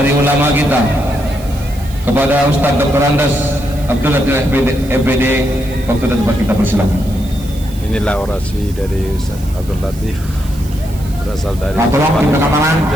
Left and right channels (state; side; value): noise; right; hiss, 20 dB below the sound